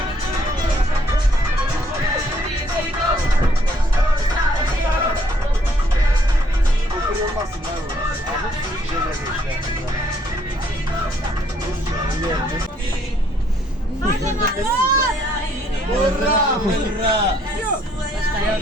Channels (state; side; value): normal; both; correlation 0.67